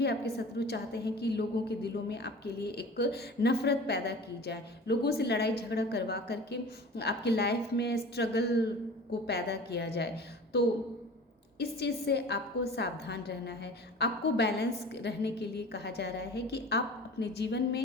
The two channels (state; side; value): normal; both; correlation 0.39